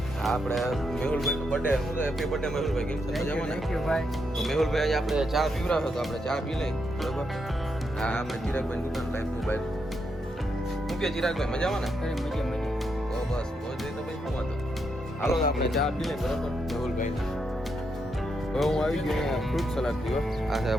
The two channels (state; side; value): normal; both; correlation 0.81